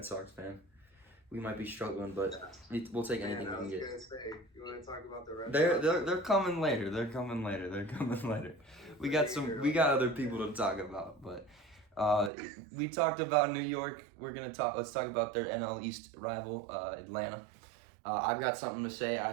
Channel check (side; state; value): left; drops out; at 12.3 s